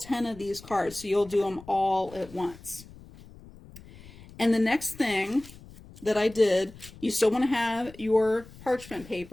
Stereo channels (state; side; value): noise; left; rumble, 19 dB below the sound